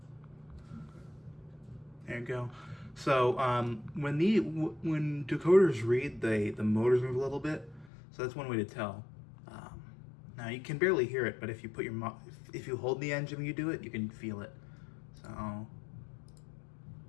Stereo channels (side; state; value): right; drops out; at 7.9 s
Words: There you go. So when decoders read, the motors move a little bit, so that's one way to tell. Now you can barely hear it, but if you put if you hold the engine when you do it, you can feel it. So